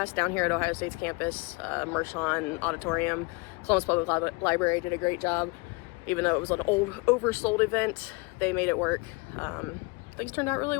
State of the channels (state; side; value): quieter; right; 27.5 dB